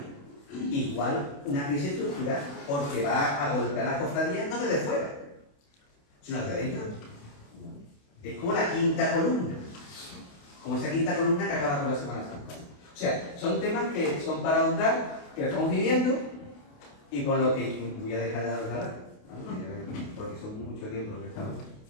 igual una crisis estructural, porque va a golpear las cofradías no desde fuera, sino desde dentro. Es como la quinta columna, como esa quinta columna que acaba con la Semana Santa. O sea, son temas que son para ahondar, que estamos viviendo, y con lo que voy a dejar de hablar, porque son mucho tiempo lo que estamos.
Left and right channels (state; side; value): late; right; 28 ms